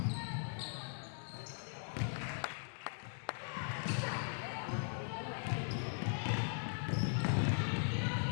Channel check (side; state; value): right; silent; digital silence